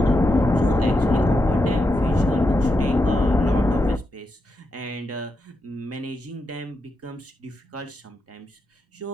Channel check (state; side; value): normal; both; correlation 0.85